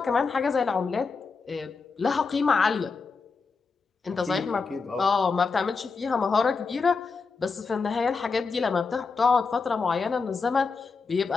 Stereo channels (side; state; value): right; quieter; 4.7 dB